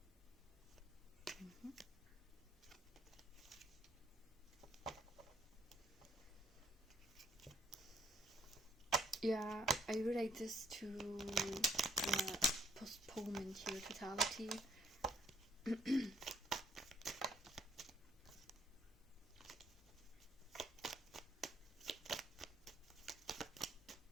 Yeah, I relate this to the postponement here, totality.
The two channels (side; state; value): both; normal; correlation 0.67